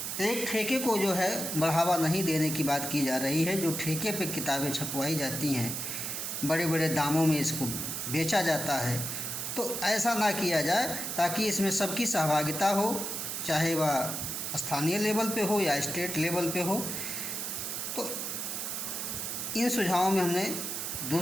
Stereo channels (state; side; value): noise; right; hiss, 4 dB below the sound